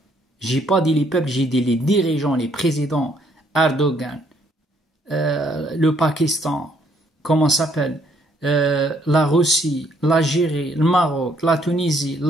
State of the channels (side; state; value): both; normal; correlation 0.68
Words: J'ai pas dit les peuples, j'ai dit les dirigeants, les présidents. Erdogan, le Pakistan, comment ça s'appelle? La Russie, l'Algérie, le Maroc, la Tunisie,